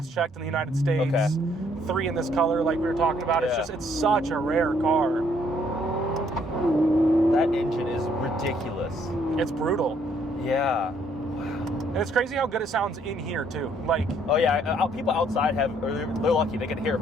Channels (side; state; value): both; normal; correlation 0.66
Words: checked in the United States. 3 in this color, like we were talking about. It's such a rare car. That engine is ridiculous. It's brutal. Yeah. And it's crazy how good it sounds in here too. Like, oh yeah, people outside they're lucky they can hear it